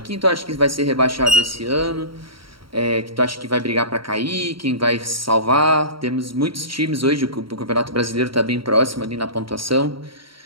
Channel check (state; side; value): late; left; 0.74 ms